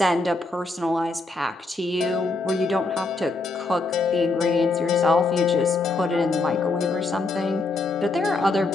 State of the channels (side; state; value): right; quieter; 3.3 dB